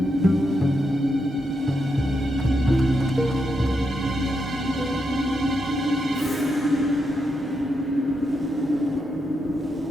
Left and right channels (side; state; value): both; normal; correlation 0.83